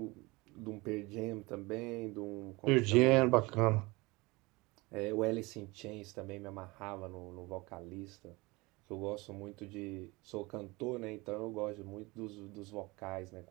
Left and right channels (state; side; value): quieter; left; 23.7 dB